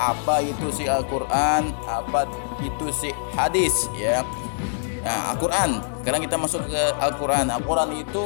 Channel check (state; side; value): silent; right; digital silence